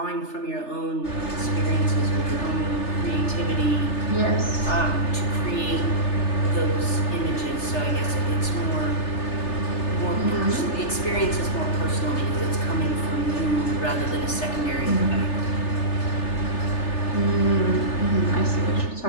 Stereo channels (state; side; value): late; right; 3.3 ms